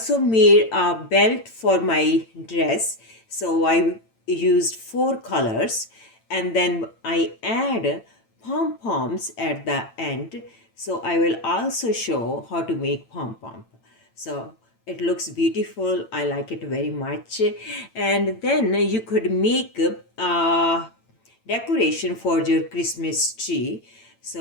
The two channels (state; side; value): late; right; 8.9 ms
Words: made a belt for my dress. So I used four colors and then I add pom-poms at the end. So I will also show how to make pom-pom. So it looks beautiful. I like it very much. And then you could make decoration for your Christmas tree.